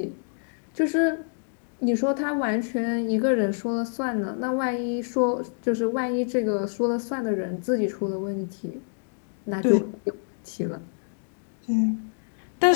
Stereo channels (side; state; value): right; silent; digital silence